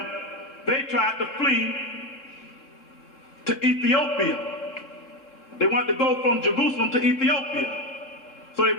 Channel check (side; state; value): right; late; 3.7 ms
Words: they tried to flee to Ethiopia. They wanted to go from Jerusalem to Ethiopia. So they